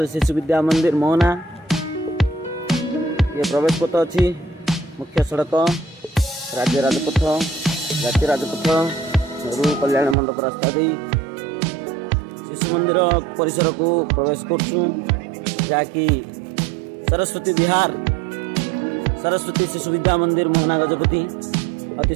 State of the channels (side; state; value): left; drops out; at 10.2 s